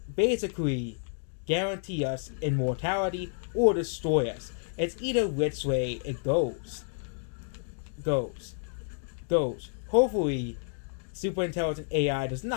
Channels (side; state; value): right; silent; digital silence